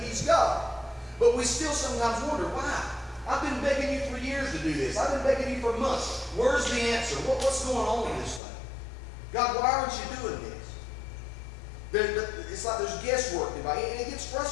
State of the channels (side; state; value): right; drops out; at 8.4 s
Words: he's God. But we still sometimes wonder, why? I've been begging you for years to do this. I've been begging you for months. Where's the answer? What's going on with this thing? God, why aren't you doing this? It's like there's guesswork involved. And it gets